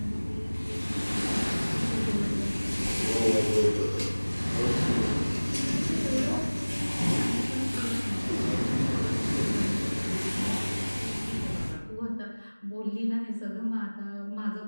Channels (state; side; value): inverted; both; correlation -1.00